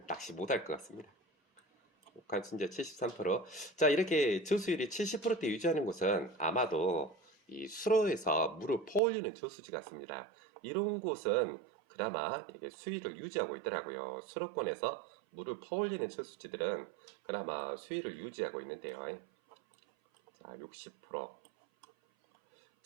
낚시 못할 것 같습니다. 관순자 73%. 자, 이렇게 저수율이 70%대 유지하는 곳은 아마도 이 수로에서 물을 퍼올리는 저수지 같습니다. 이런 곳은 그나마 이렇게 수위를 유지하고 있더라고요. 수로권에서 물을 퍼올리는 저수지들은 그나마 수위를 유지하고 있는데요. 자, 60%.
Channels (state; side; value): drops out; left; at 9.0 s